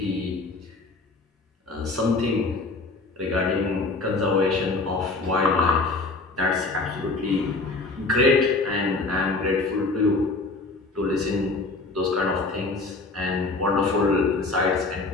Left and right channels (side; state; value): right; quieter; 3.4 dB